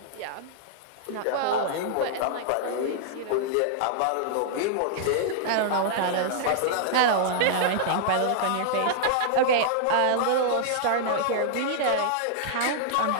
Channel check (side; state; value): both; different; correlation -0.01